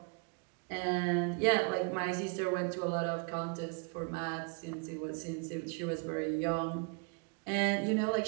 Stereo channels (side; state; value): left; quieter; 36.1 dB